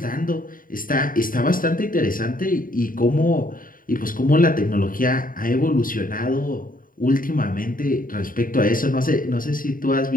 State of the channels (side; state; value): right; late; 0.40 ms